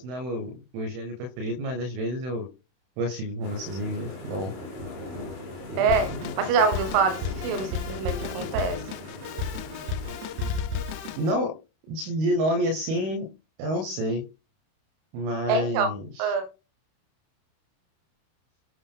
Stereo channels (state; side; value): late; left; 32 ms